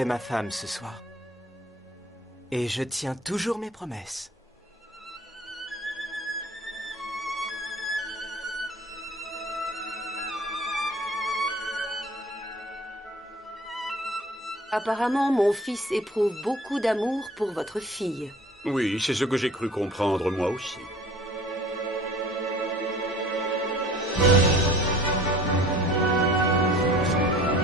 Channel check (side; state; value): both; normal; correlation 0.47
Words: ma femme ce soir. Et je tiens toujours mes promesses. Apparemment, mon fils éprouve beaucoup d'amour pour votre fille. Oui, c'est ce que j'ai cru comprendre moi aussi.